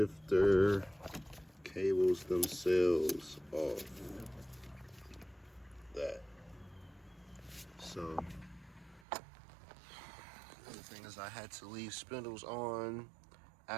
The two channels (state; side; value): drops out; left; at 9.1 s